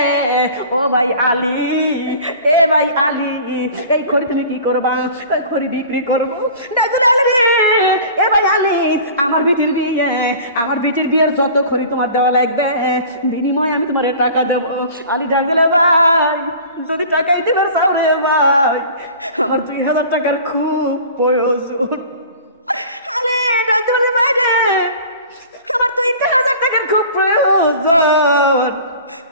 ও ভাই আলী, এ ভাই আলী এই খড়ি তুমি কি করবা? খড়ি বিক্রি করবো। আলী রে এ ভাই আলী আমার বিটির বিয়ে, আমার বিটির বিয়ের যত খড়ি তোমার দেওয়া লাগবে বিনিময়ে আমি তোমার টাকা দেবো। আলী ডাক দিলে, ভাই যদি টাকাই দিবে চাও রে ভাই, আমার 2000 টাকার খুব প্রয়োজন। আলী ডাক দিলে, ভাই রে আমার 2000 টাকার খুব প্রয়োজন,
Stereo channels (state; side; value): inverted; both; correlation -0.42